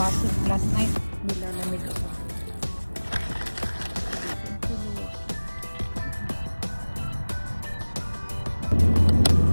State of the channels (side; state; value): both; inverted; correlation -1.00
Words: food last night. Nilalamig ako.